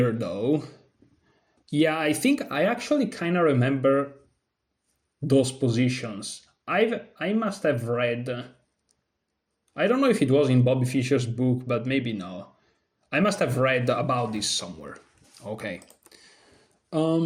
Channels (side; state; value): both; identical; correlation 1.00